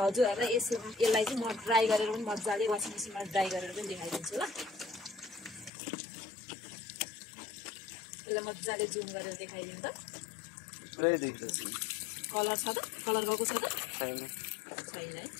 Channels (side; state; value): right; drops out; at 5.7 s